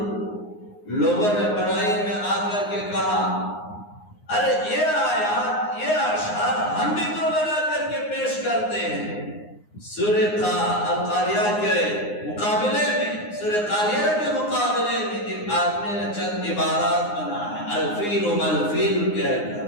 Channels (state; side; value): late; right; 9.7 ms